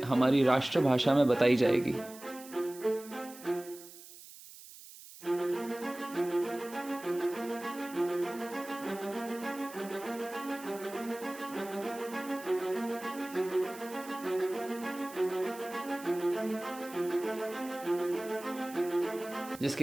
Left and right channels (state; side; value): noise; right; hiss, 17 dB below the sound